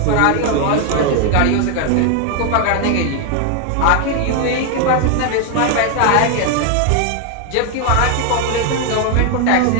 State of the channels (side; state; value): both; different; correlation 0.00